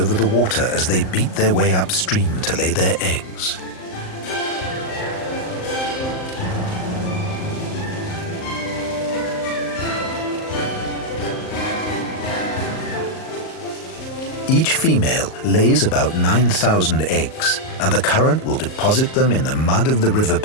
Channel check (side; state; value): right; late; 38 ms